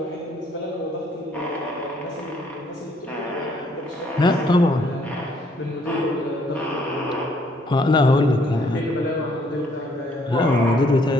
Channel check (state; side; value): normal; both; correlation 0.66